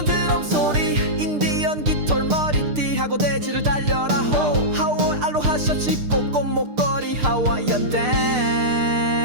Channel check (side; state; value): left; late; 6.7 ms